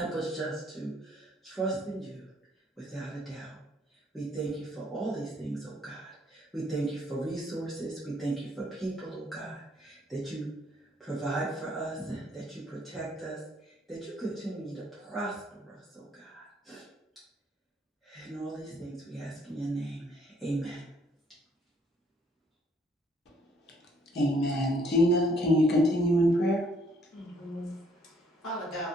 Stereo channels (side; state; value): both; normal; correlation 0.65